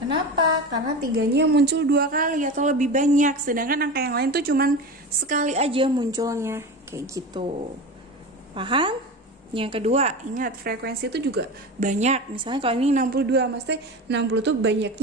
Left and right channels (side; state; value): both; normal; correlation 0.28